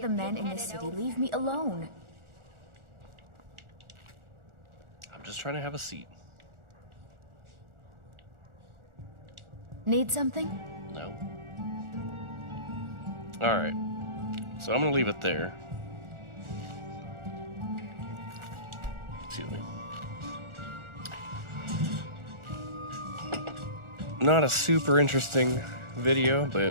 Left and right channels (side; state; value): left; late; 1.4 ms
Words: men in this city leave me alone? I'm just trying to have a seat. Need something? No. Alright. So I'm gonna leave it there. Excuse me. Not a super interesting video,